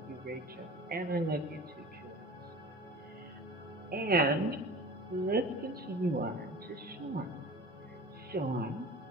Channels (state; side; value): normal; both; correlation 0.38